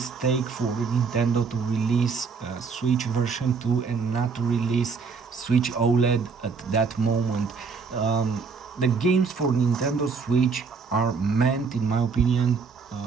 for Nintendo to release Switch version 2 and not to release Switch OLED at that moment. The games for Nintendo Switch are meant, in my opinion,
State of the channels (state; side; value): quieter; left; 5.1 dB